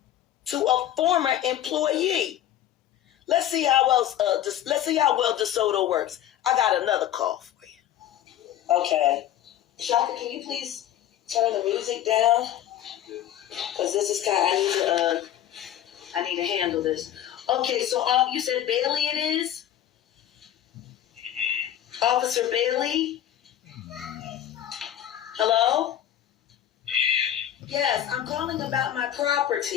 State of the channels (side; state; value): right; quieter; 11.5 dB